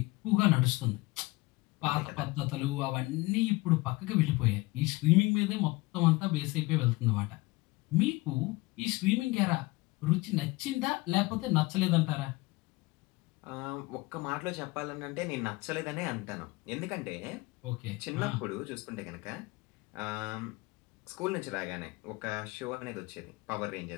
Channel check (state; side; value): quieter; right; 22.3 dB